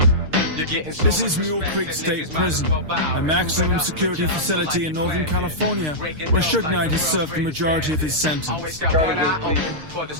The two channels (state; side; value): late; left; 6.5 ms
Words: This is Mule Creek State Prison, a maximum security facility in Northern California where Suge Knight has served the majority of his sentence.